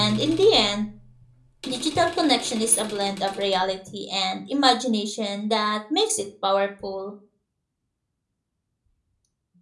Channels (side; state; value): both; identical; correlation 1.00